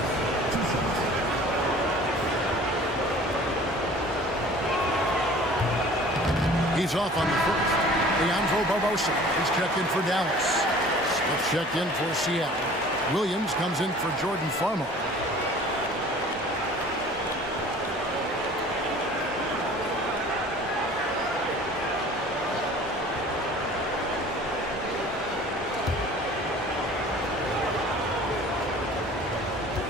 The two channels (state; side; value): normal; both; correlation 0.47